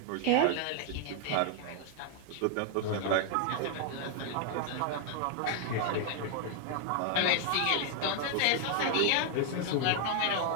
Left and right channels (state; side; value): different; both; correlation 0.00